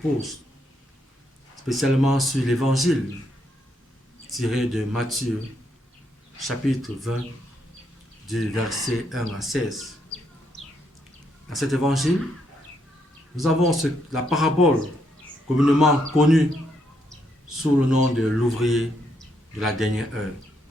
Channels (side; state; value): both; normal; correlation 0.76